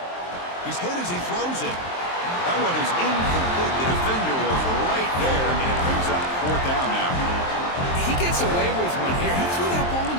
He's hit as he throws it. That one is incomplete. The defender was right there, and it brings up 4th down now. He gets away with one here. He threw that ball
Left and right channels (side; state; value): right; late; 23 ms